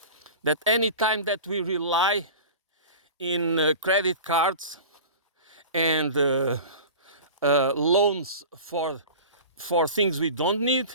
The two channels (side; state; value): both; inverted; correlation -0.35